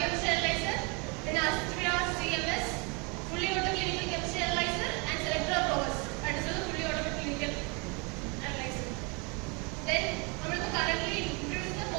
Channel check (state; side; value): quieter; left; 31.2 dB